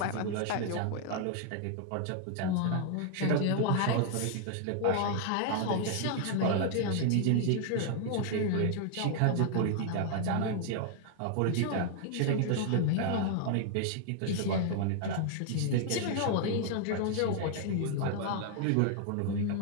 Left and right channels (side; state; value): both; different; correlation 0.00